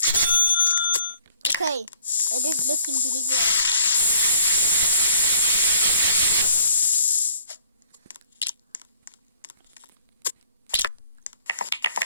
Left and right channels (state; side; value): inverted; both; correlation -0.58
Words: Okay, it is looking really good.